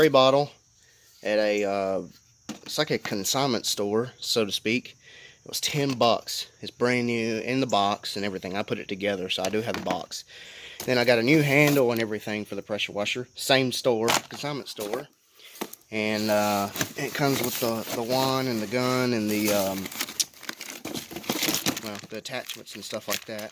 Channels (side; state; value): both; identical; correlation 1.00